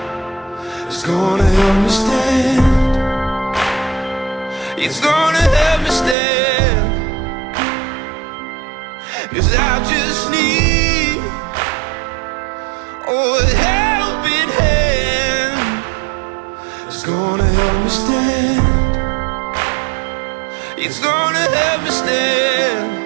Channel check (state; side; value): drops out; left; at 6.2 s